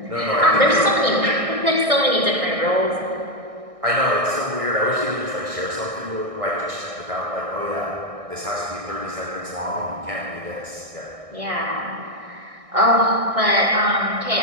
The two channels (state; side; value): late; left; 1.6 ms